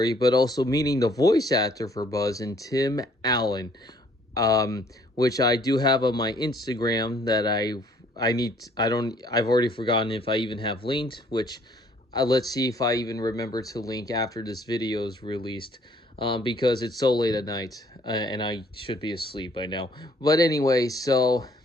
but also meeting the voice actor for Buzz and Tim Allen, which I do have on my Instagram that I've already forgotten if I even have linked, which let's see if I even remember to link after this video is released, because it's so late at night and I should be asleep by now. But anyway, so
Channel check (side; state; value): both; normal; correlation 0.61